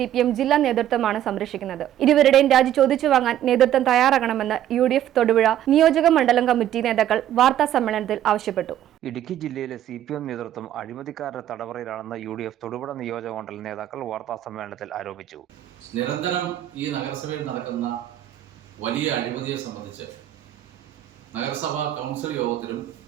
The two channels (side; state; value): left; quieter; 11.8 dB